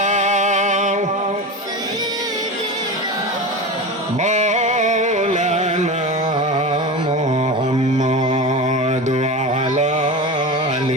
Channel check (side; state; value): both; normal; correlation 0.26